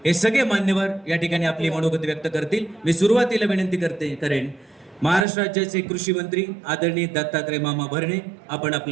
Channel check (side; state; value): left; drops out; at 5.2 s